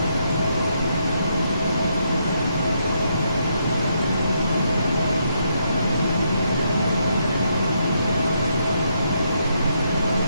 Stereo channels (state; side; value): inverted; both; correlation -0.77